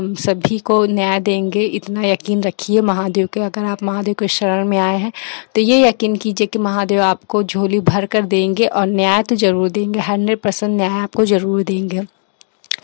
सभी को न्याय देंगे। इतना यकीन रखिए महादेव के। अगर आप महादेव के शरण में आए हैं तो ये यकीन कीजिए कि महादेव आपको झोली भर कर देंगे और न्याय तो ज़रूर देंगे, 100% न्याय आपको ज़रूर देंगे।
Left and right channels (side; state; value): right; silent; digital silence